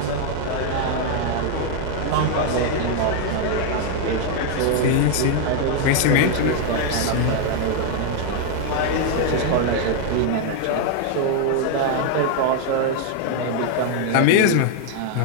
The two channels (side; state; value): both; different; correlation 0.00